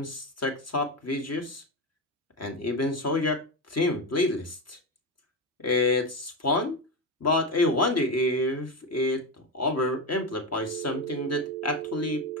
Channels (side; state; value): both; normal; correlation 0.15